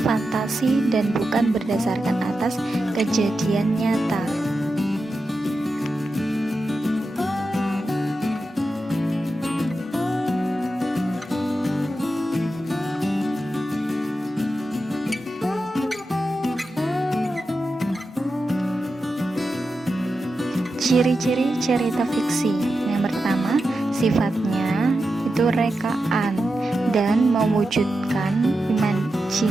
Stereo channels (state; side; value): normal; both; correlation 0.90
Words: fantasi dan bukan berdasarkan atas kejadian nyata. Ciri-ciri cerita fiksi. Yang pertama, sifatnya itu rekaan dan mewujudkan